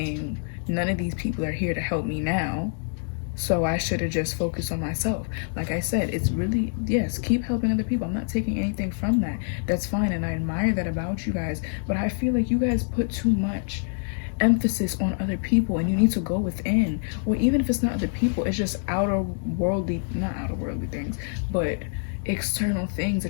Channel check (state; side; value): silent; right; digital silence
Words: none of these people are here to help me now. So I should have just focused on myself. Like I said, it's really, yes, keep helping other people. I'm not taking anything from that. That's fine, and I admire that about you guys. But I feel like you guys put too much emphasis on other people, and you need to go within. Or even if it's not other people, it's just not outer worldly things, but external things